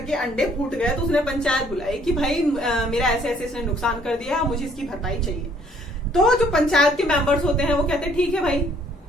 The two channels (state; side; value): normal; both; correlation 0.62